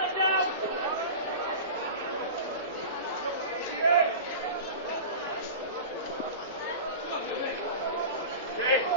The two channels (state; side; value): inverted; both; correlation -0.31